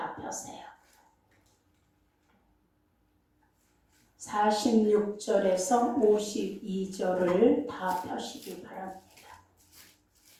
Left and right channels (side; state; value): both; identical; correlation 1.00